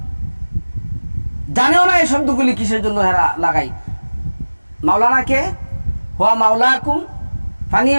জানেও না এই শব্দগুলি কিসের জন্য লাগাই। মাওলানা কে? হুয়া মাওলাকুম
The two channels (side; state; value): both; inverted; correlation -1.00